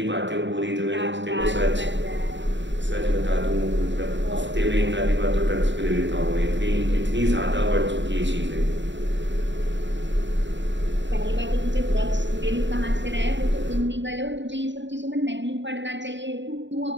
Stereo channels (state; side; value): late; left; 0.53 ms